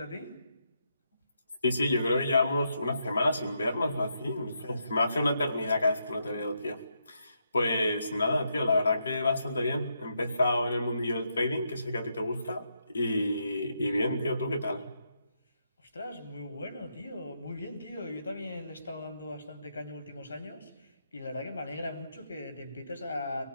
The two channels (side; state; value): both; inverted; correlation -0.80